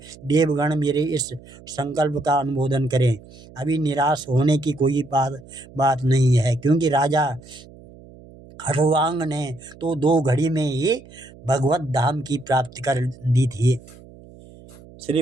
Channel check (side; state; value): right; noise; hum, 21 dB below the sound